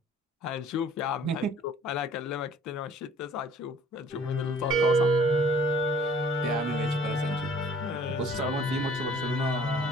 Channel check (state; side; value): normal; both; correlation 0.54